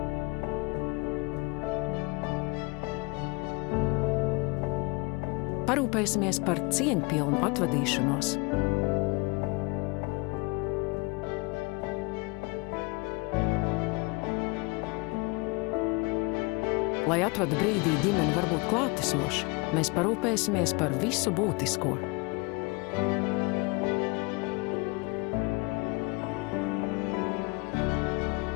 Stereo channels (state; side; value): quieter; right; 27.4 dB